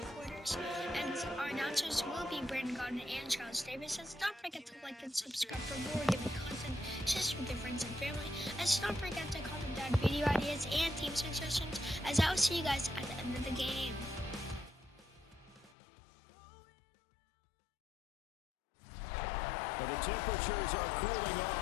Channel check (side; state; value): right; drops out; at 15.8 s